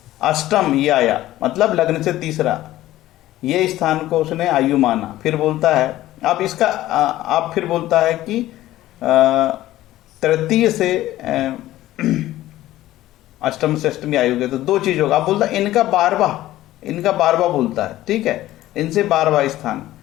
अष्टम ये आया, मतलब लग्न से तीसरा ये स्थान को उसने आयु माना। फिर बोलता है अब इसका आप फिर बोलता है कि तृतीय से अष्टम से अष्टमी आयु के तो 2 चीज होगा। आप बोलता है इनका 12वां बोलता है, ठीक है। इनसे 12वां स्थान,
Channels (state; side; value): quieter; right; 15.1 dB